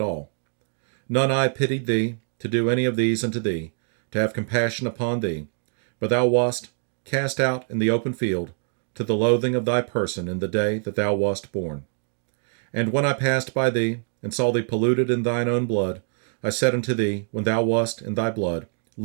all. None eye pitied thee, to do any of these unto thee, to have compassion upon thee. But thou wast cast out in the open field, to the loathing of thy person in the day that thou wast born. And when I passed by thee, and saw thee polluted in thine own blood, I said unto thee, when thou wast in thy blood,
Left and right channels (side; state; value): left; silent; 58 dB below the other